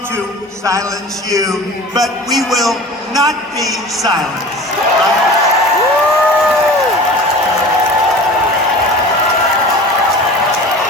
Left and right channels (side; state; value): both; normal; correlation 0.38